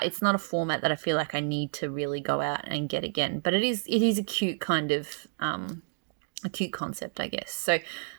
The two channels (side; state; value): left; silent; digital silence